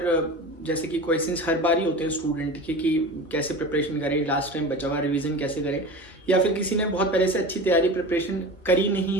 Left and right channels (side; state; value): both; normal; correlation 0.32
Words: जैसे कि क्वेश्चंस हर बार ही होते हैं स्टूडेंट के कि कैसे प्रिपरेशन करें, लास्ट टाइम बचा हुआ रिवीजन कैसे करें, या फिर किसी ने बहुत पहले से अच्छी तैयारी प्रिपरेशन करी नहीं